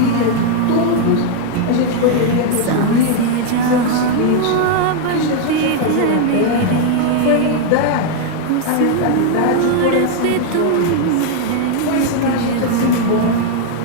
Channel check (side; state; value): both; different; correlation 0.00